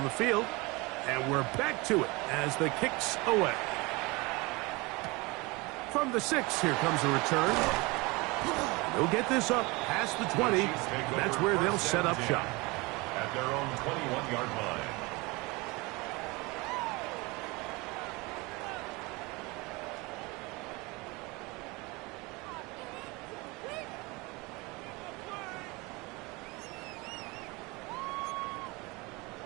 the field, and we're back to it as the kick's away. From the 6, here comes a return. They'll get this up past the 20. That's where they'll set up shop. At their own 21-yard line.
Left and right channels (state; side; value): quieter; left; 24.9 dB